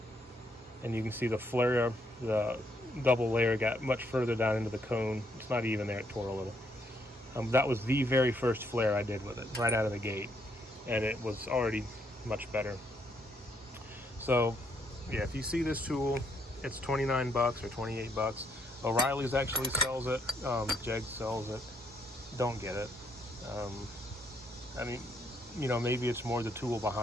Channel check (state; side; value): normal; both; correlation 0.72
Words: And you can see the flare, the double layer got much further down into the cone. It's not even there, it tore a little. That was the very first flare I did with it, right out of the gate. and it was already much better. So yeah, if you see this tool, it's 29 bucks or 28 bucks. O'Reilly's actually sells it. Jeg sells it. Don't get it. I mean, you know, maybe it's more the tool